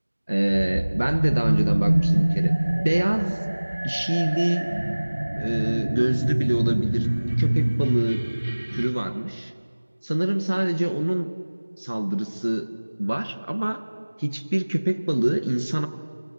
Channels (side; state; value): both; inverted; correlation -1.00